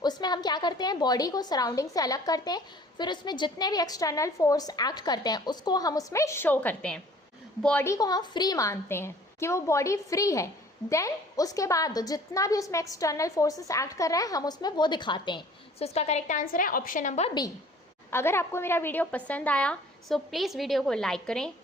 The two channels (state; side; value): normal; both; correlation 0.51